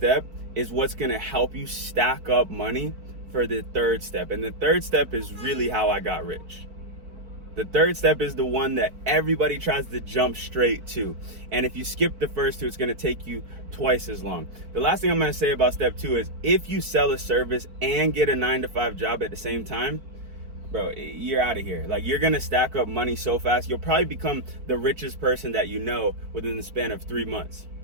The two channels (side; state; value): left; late; 4.5 ms